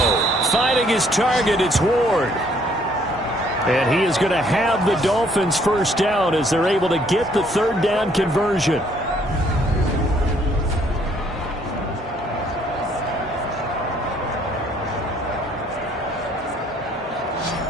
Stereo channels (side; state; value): both; normal; correlation 0.64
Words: Finding his target, it's Ward. And he is going to have the Dolphins first down as they're able to get the 3rd down conversion.